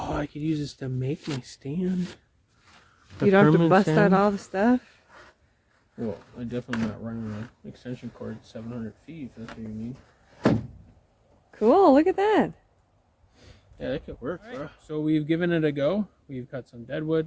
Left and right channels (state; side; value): identical; both; correlation 1.00